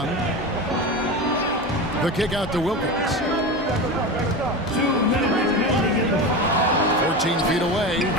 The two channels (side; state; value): both; normal; correlation 0.24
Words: The kick out to Wilkins. 14 feet away.